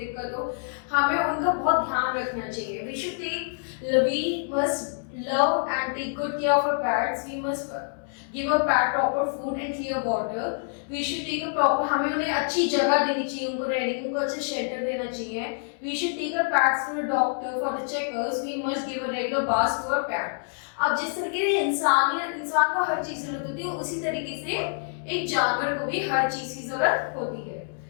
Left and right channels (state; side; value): silent; right; 60 dB below the other